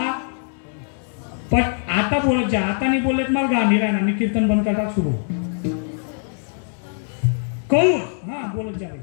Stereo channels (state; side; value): silent; right; 64 dB below the other